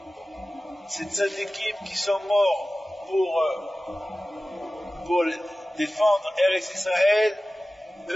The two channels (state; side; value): normal; both; correlation 0.96